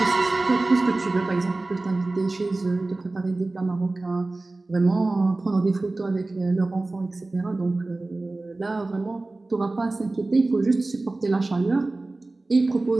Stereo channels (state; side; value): quieter; left; 3.1 dB